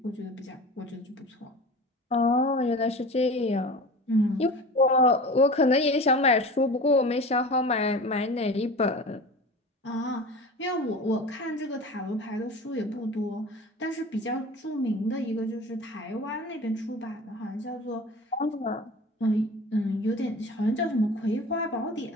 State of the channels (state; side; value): normal; both; correlation 0.36